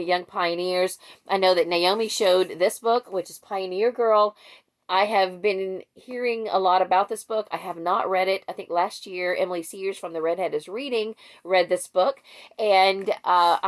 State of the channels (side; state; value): both; identical; correlation 1.00